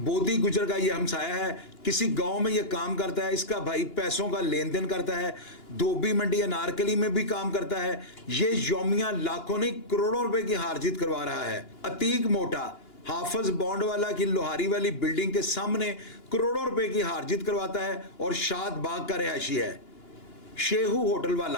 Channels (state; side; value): late; right; 2.9 ms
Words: گجر کا یہ ہمسایہ ہے, کسی گاؤں میں یہ کام کرتا ہے, اس کا بھائی پیسوں کا لین دین کرتا ہے, دھوبی منڈی انارکلی میں بھی کام کرتا ہے. یہ یومیہ لاکھوں نہیں کروڑوں روپے کی ہار جیت کروا رہا ہے. عتیق موٹا حافظ بونڈ والا کی لوہاری والی بلڈنگ کے سامنے کروڑوں روپے کی ہار جیت کرواتا ہے اور شاد باغ کا رہائشی ہے. شیہو ہوٹل